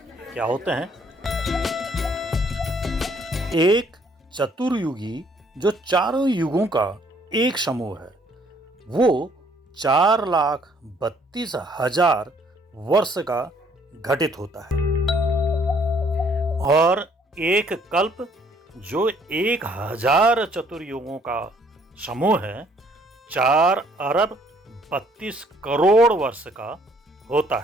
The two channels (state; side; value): normal; both; correlation 0.63